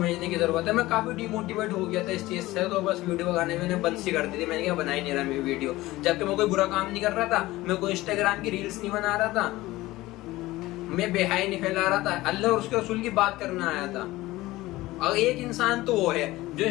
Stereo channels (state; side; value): quieter; right; 18.2 dB